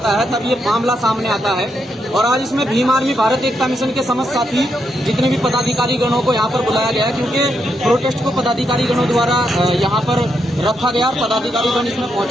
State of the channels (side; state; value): both; normal; correlation 0.81